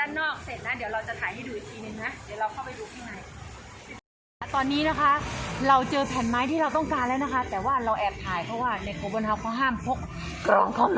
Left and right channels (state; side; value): identical; both; correlation 1.00